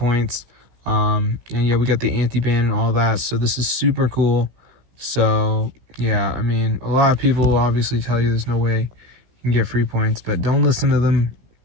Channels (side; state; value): left; late; 16 ms